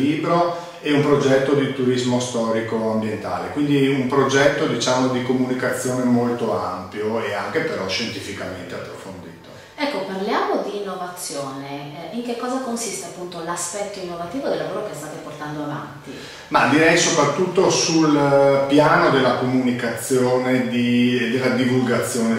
e un progetto di turismo storico ambientale, quindi un progetto, diciamo, di comunicazione molto ampio e anche però scientificamente approfondito. Ecco, parliamo di innovazione. In che cosa consiste appunto l'aspetto innovativo del lavoro che state portando avanti? Ma direi soprattutto sul piano della comunicazione e della divulgazione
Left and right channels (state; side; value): identical; both; correlation 1.00